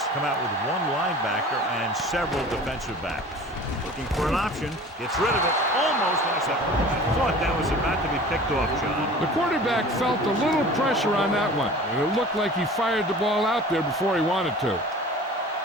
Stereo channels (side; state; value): both; normal; correlation 0.42